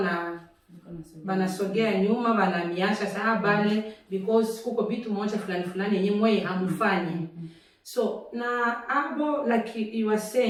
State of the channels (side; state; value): both; identical; correlation 1.00